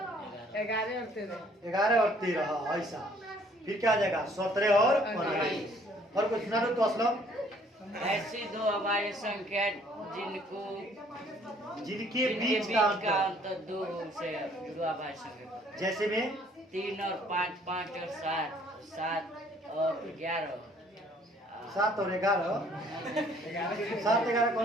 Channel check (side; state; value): both; normal; correlation 0.60